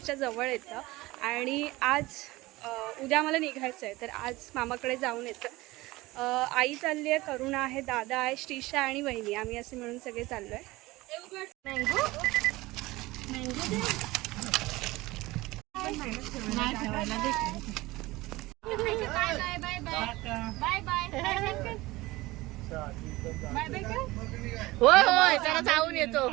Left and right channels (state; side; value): quieter; left; 19.9 dB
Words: जवळ येतं आणि आज उद्या आम्हाला निघायचं आहे. तर आज मामाकडे जाऊन येतं. आई चालली आहे, करुणा आहे, दादा आहे, श्रीषा आणि वहिनी. आम्ही असे मिळून सगळे चाललो आहे. होय होय जरा जाऊन येतो.